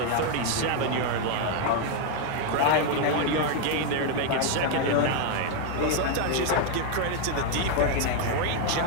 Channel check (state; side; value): different; both; correlation 0.00